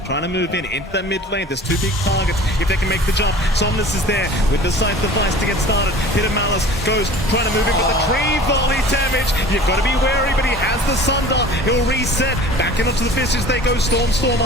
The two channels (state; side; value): normal; both; correlation 0.43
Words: trying to move in into that mid lane. There's two big targets if they can make the jump. Somnus is there with the scythe device to get started. Pit of Malice goes trying to move in, but the tree volley damage. You've got to be wary, but he has the Sunder. He'll reset. Back in onto the Fissures they go.